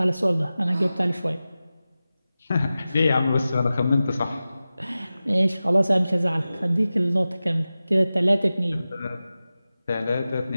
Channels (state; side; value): inverted; both; correlation -0.95